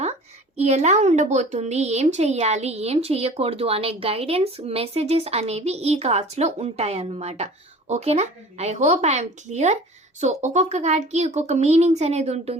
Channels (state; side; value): normal; both; correlation 0.43